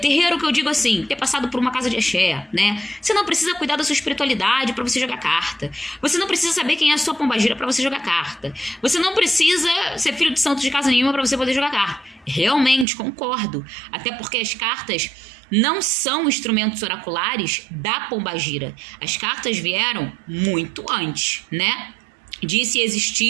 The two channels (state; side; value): drops out; left; at 12.9 s